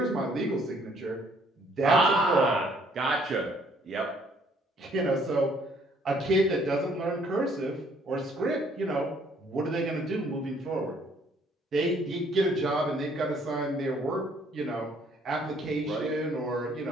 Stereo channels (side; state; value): both; normal; correlation 0.63